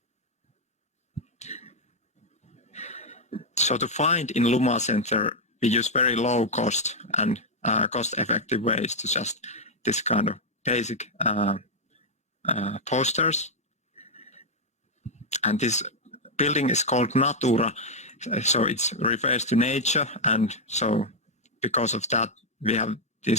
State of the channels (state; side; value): normal; both; correlation -0.02